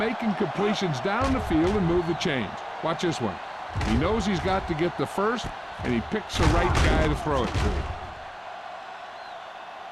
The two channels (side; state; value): both; identical; correlation 1.00